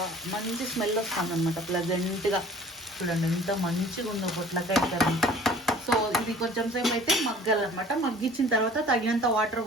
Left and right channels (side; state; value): both; normal; correlation 0.48